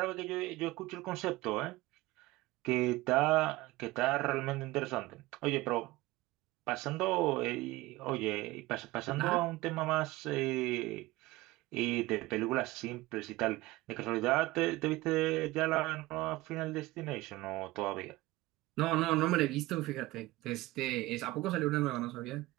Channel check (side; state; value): left; quieter; 19.4 dB